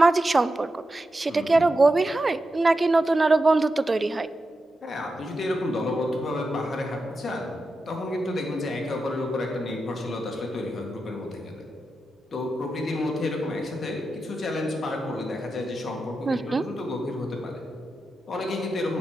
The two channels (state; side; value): normal; both; correlation 0.89